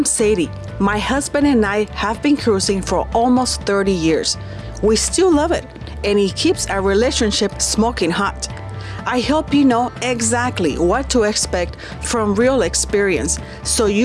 Sadie. My husband and I have been cruising for almost 30 years. We still love it, and it keeps our relationship smoking hot. I hope you know exactly what to expect from real experience, so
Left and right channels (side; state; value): both; identical; correlation 1.00